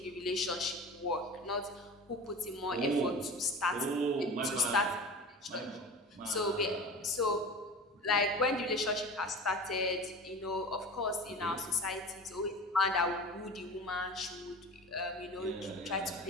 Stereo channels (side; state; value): both; normal; correlation 0.35